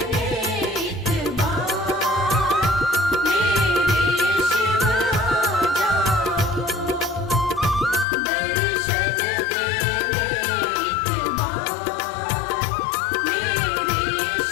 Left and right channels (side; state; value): right; drops out; at 8.1 s